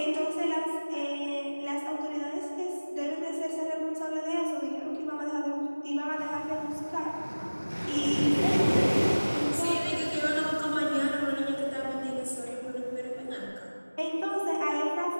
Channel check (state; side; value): inverted; both; correlation -1.00